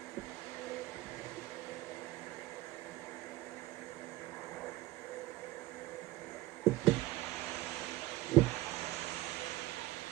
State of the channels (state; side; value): quieter; left; 17.8 dB